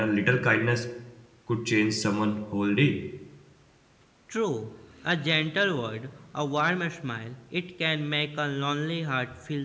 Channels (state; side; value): identical; both; correlation 1.00